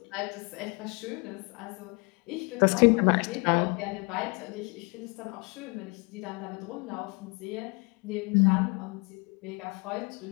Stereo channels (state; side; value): quieter; right; 31.2 dB